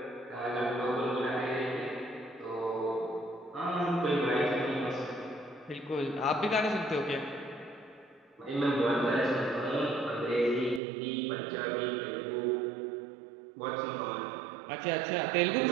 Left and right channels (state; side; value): drops out; left; at 10.8 s